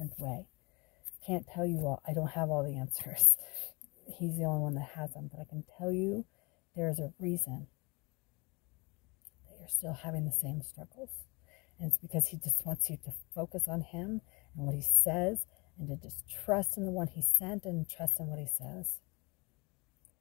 way. I can't tell you all. I don't have all the answers. He's the only one that has them, but I can tell you there's a reason that you're still having the same struggles. And it's because He just wants you to focus on Him and what He says, and to just trust in the one He sent and trust in what He says.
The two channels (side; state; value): right; quieter; 27.8 dB